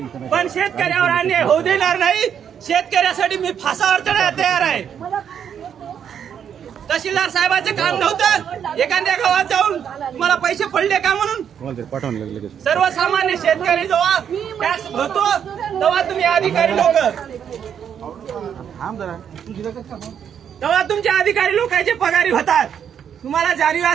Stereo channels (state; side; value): quieter; left; 8.4 dB